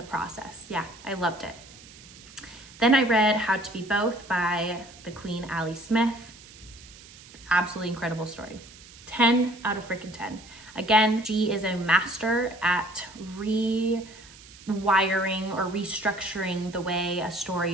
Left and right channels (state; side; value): noise; right; hiss, 20 dB below the sound